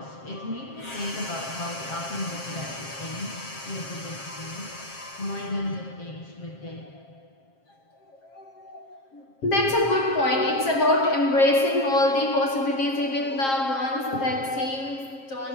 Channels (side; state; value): right; late; 7.5 ms